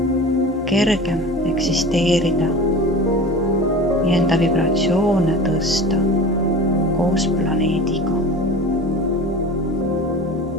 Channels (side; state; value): both; normal; correlation 0.36